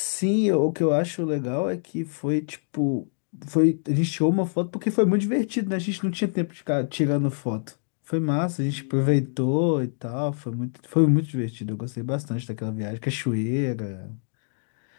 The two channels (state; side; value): silent; right; digital silence